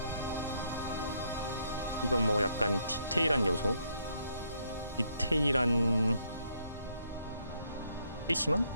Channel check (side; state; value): both; inverted; correlation -0.72